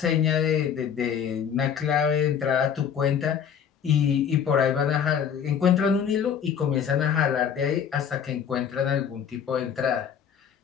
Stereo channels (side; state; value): right; quieter; 8.0 dB